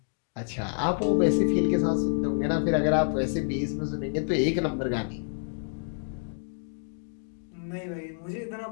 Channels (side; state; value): right; silent; digital silence